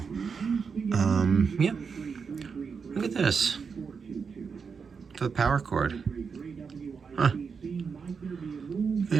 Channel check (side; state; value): left; quieter; 5.7 dB